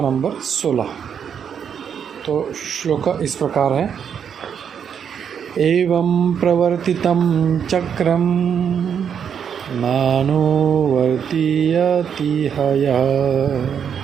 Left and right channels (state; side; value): quieter; left; 7.7 dB